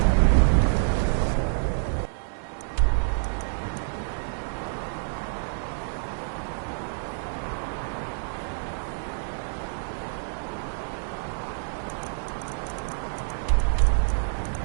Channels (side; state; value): left; silent; digital silence